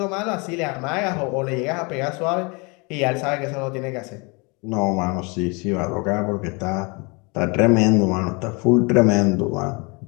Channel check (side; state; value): right; quieter; 29.9 dB